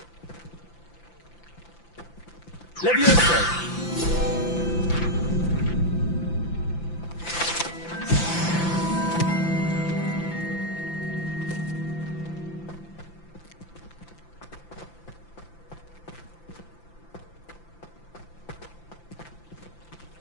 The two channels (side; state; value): right; late; 5.9 ms